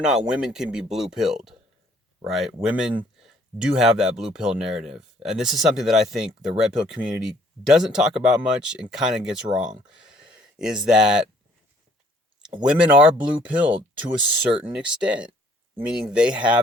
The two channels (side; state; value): both; normal; correlation 0.61